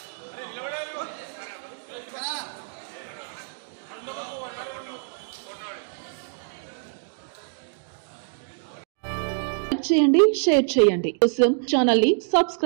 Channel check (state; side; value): silent; left; 61 dB below the other